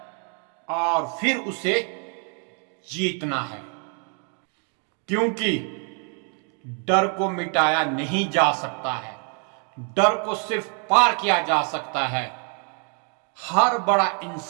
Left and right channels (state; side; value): quieter; left; 40.0 dB